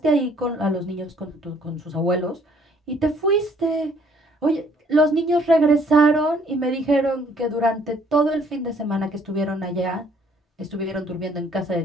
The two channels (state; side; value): normal; both; correlation 0.62